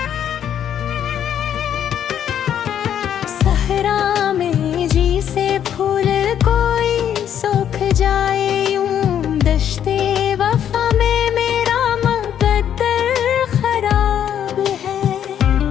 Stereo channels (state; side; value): quieter; right; 9.6 dB